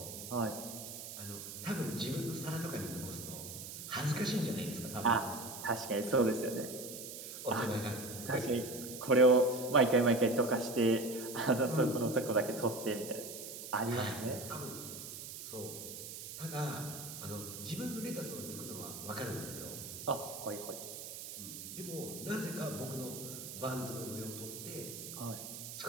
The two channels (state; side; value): noise; right; hiss, 9 dB below the sound